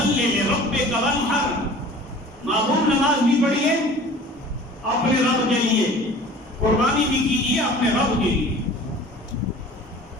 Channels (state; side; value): normal; both; correlation 0.44